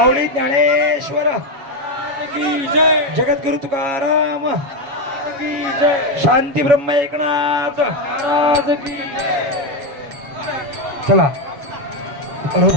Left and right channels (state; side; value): late; left; 7.1 ms